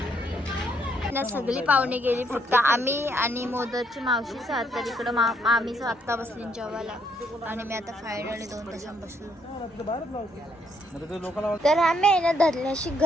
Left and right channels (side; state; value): both; normal; correlation 0.72